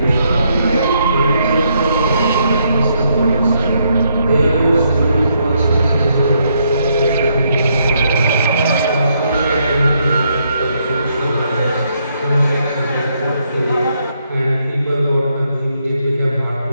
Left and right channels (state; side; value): inverted; both; correlation -0.75